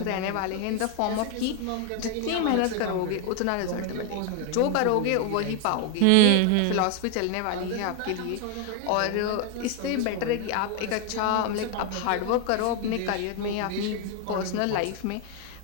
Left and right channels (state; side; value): different; both; correlation 0.01